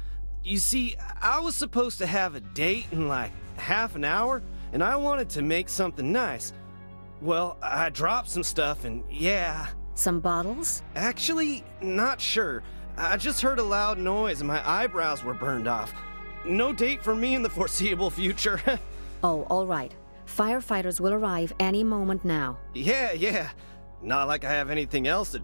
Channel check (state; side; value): inverted; both; correlation -1.00